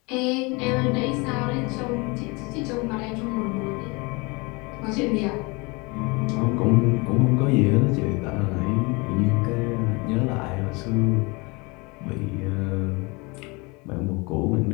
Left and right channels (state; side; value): quieter; right; 27.3 dB